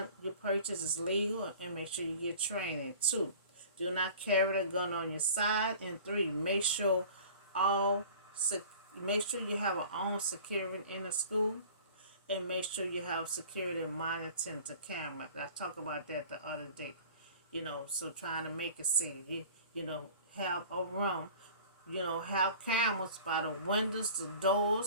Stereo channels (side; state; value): both; inverted; correlation -0.44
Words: you purchase is legal and make sure you get training. 2, do not carry the gun on your side. And 3, make sure you have a own security in the school, and make sure you have security monitoring the camera. I talked about that the other day. So trying to make it safe. Have a room. Have cameras by the windows, the